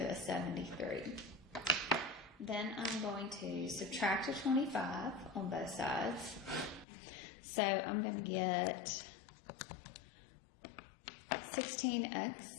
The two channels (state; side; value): drops out; right; at 6.9 s